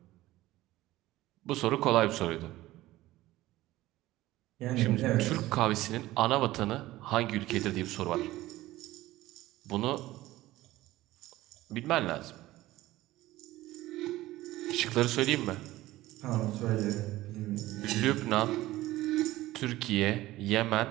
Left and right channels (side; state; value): left; quieter; 16.8 dB